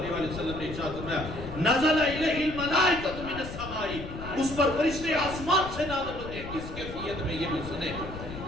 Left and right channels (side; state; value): left; noise; rumble, 10 dB below the sound